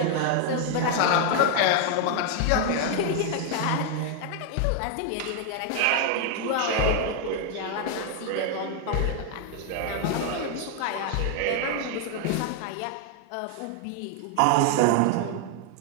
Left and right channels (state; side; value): different; both; correlation 0.00